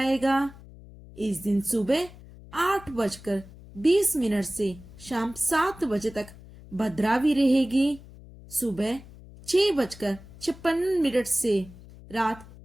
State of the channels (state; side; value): noise; left; hum, 19 dB below the sound